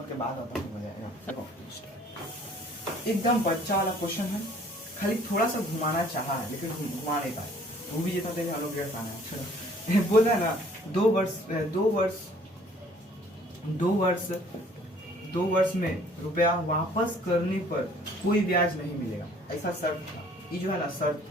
के बाद आता हो जाएगा। देखो, एकदम बच्चा वाला क्वेश्चन है, खाली थोड़ा सा घुमाना चाहा है लेकिन घुमा नहीं पाए, वो भी जितना देर हम लोग डेढ़ पाना है। चलो बोल रहा है ना 2 वर्ष में रुपया वापस करने पर कोई ब्याज नहीं मिलेगा, ऐसा शर्त था। ये जो है ना शर्त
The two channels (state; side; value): normal; both; correlation 0.56